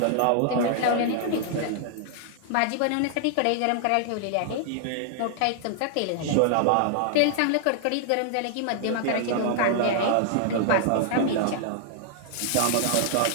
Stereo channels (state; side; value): different; both; correlation -0.01